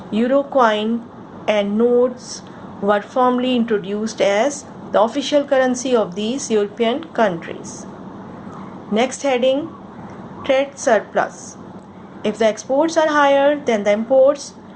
Euro coin and notes were formally introduced as the official currency of these European countries. Next heading, trade surplus. If the exports are higher than the imports,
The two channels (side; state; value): both; identical; correlation 1.00